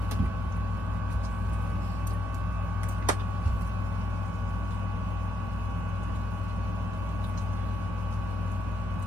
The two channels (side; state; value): both; normal; correlation 0.80